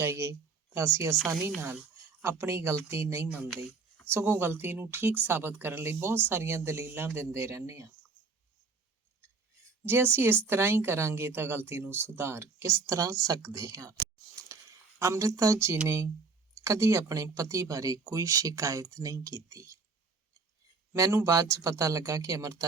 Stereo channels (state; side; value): quieter; left; 4.5 dB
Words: ਤਾਂ ਅਸੀਂ ਆਸਾਨੀ ਨਾਲ ਆਪਣੀ ਗਲਤੀ ਨਹੀਂ ਮੰਨਦੇ, ਸਗੋਂ ਗਲਤੀ ਨੂੰ ਠੀਕ ਸਾਬਤ ਕਰਨ ਲਈ ਬਹੁਤ ਸਾਰੀਆਂ ਦਲੀਲਾਂ ਦਿੰਦੇ ਰਹਿੰਦੇ ਹਾਂ। ਜੇ ਅਸੀਂ ਇਸ ਤਰ੍ਹਾਂ ਹੀ ਕਰਾਂਗੇ ਤਾਂ ਗਲਤੀ ਨੂੰ ਸੁਧਾਰ ਕਿਸ ਤਰ੍ਹਾਂ ਸਕਦੇ ਹਾਂ। ਅੰਮ੍ਰਿਤਾ ਜੀ ਨੇ ਕਦੀ ਆਪਣੇ ਪਤੀ ਬਾਰੇ ਕੋਈ ਸ਼ਿਕਾਇਤ ਨਹੀਂ ਕੀਤੀ। ਮੈਨੂੰ ਬਾਅਦ 'ਚ ਪਤਾ ਲੱਗਾ ਕਿ